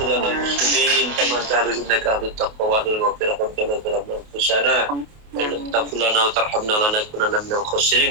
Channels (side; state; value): left; late; 28 ms